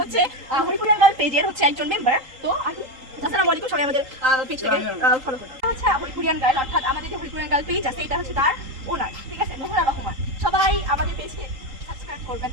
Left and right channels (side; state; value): left; late; 3.8 ms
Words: হরিপুরিয়াঙ্গা পেজের হচ্ছে একজন মেম্বার। তো আসসালামু আলাইকুম, সবাই আমাদের পেজ থেকে ফলো করুন। হচ্ছে হরিপুরিয়ান গার্ল, অর্থাৎ আমাদের যে হরিপুরিয়ান গার্ল পেজ আছে এটা হচ্ছে তার ওনার, ঠিক আছে, মোহরা রহমান। সবাই আমাদের পেজকে সাবস্ক্রাইব করবেন,